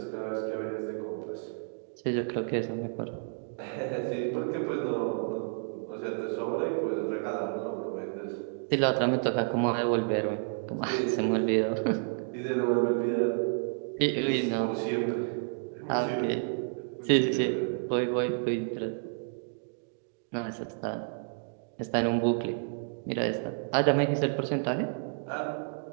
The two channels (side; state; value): left; silent; digital silence